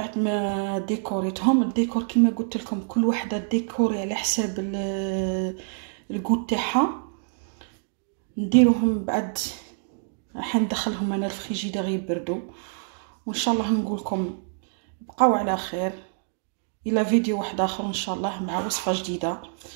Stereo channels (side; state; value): left; silent; digital silence